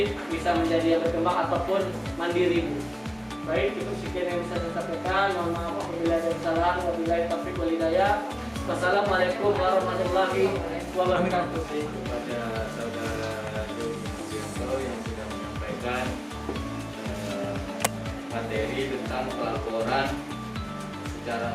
bisa menjadi yang berkembang ataupun mandiri Bu. Baik, cukup sekian yang bisa saya sampaikan. Mohon maaf apabila ada kesalahan. Wabillahi taufiq wal hidayah. Wassalamualaikum warahmatullahi wabarakatuh. Kepada saudara Joni Mugianto yang sudah menyampaikan materi tentang pelaporan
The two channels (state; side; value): identical; both; correlation 1.00